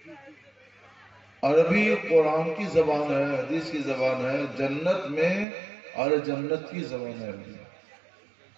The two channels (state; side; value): drops out; left; at 5.5 s